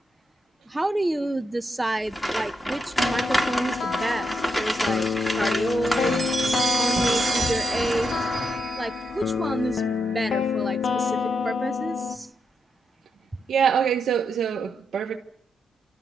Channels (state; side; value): normal; both; correlation 0.82